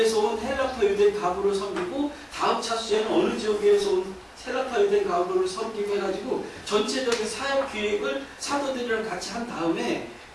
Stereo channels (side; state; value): both; identical; correlation 1.00